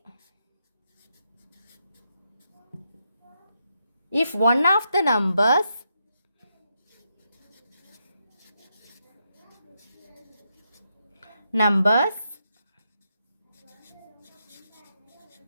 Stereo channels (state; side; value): inverted; both; correlation -0.82